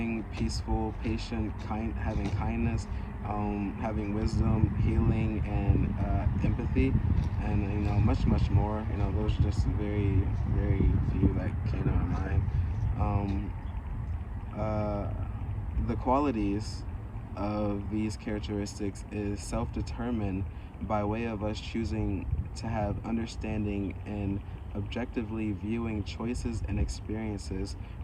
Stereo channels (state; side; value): identical; both; correlation 1.00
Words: peaceful, patient, having kindness, having wisdom, healing, and empathy, and much more. Those are just very, very few that came to my mind. The qualities of these characteristics is self-determined by way of us choosing to have understanding and objectively viewing choices and experiences